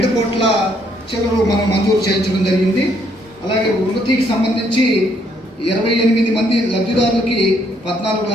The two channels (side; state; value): both; normal; correlation 0.69